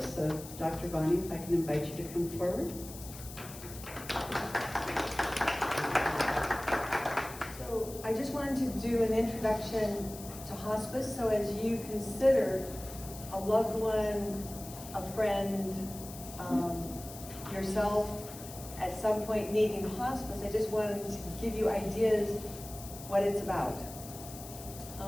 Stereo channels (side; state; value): left; noise; hiss, 14 dB below the sound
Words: So, Dr. Bonnie, if I can invite you to come forward. So I just wanted to do an introduction to hospice. So as you consider a loved one, a friend, yourself at some point needing hospice, I just wanted to give you ideas what it's about.